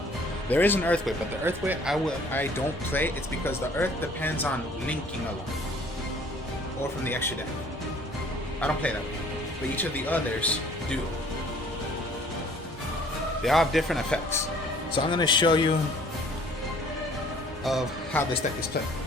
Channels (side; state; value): both; normal; correlation 0.55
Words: There is an Earth Way, but the Earth Way I don't play. It's because the Earth depends on linking a lot, or from the extra deck. I don't play that way, but each of the others do. They all have different effects. So I'm going to show you of how this deck is played